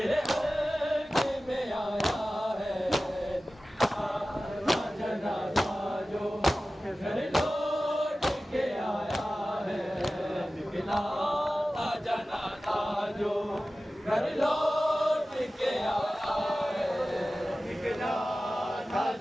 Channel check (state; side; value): normal; both; correlation 0.96